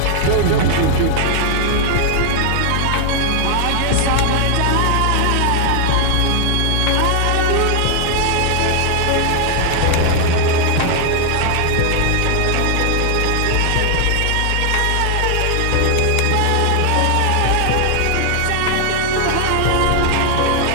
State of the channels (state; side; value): different; both; correlation 0.00